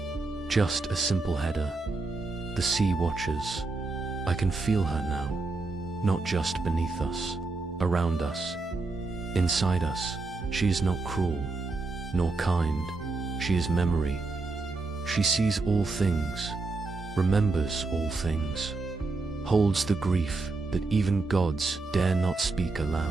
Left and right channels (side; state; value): left; quieter; 3.6 dB